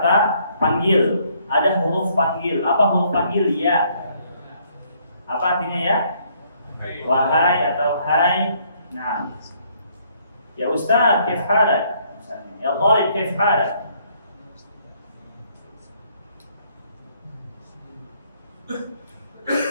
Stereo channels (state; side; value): inverted; both; correlation -0.66